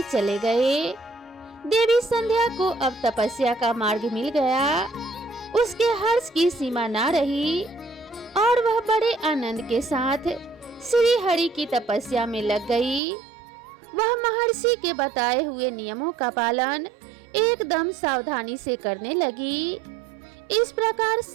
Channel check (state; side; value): drops out; left; at 13.0 s